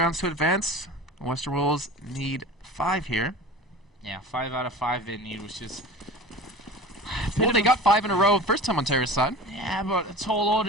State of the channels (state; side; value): normal; both; correlation 0.36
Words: to advance. The Western Wolves need 5 here. Yeah, 5 out of 5 they need, which is... Well, they got 5 in a row first time on Terrace side. Yeah, but a tall